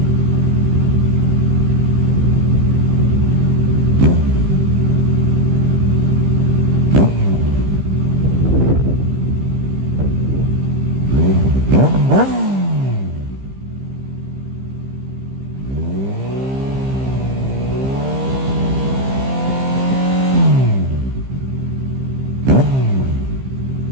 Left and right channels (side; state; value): left; late; 15 ms